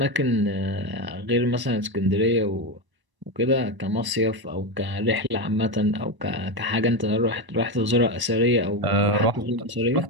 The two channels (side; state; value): left; late; 1.0 ms